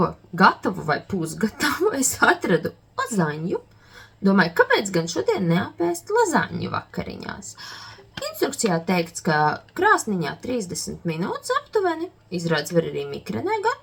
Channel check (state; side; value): identical; both; correlation 1.00